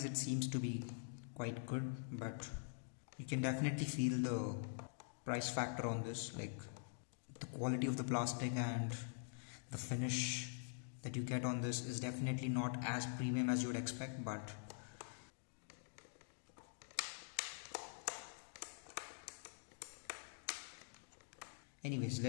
it seems to be quite good, but you can definitely feel the price factor on this, like the quality of the plastic and the finish that you get on this is definitely not as premium as you would expect. But anyways,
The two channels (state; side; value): silent; right; digital silence